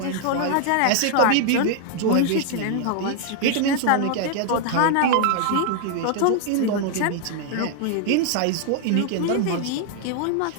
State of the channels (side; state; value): both; different; correlation 0.00